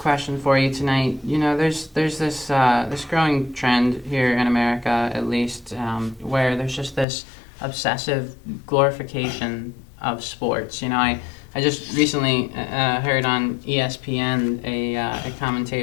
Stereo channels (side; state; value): right; drops out; at 7.1 s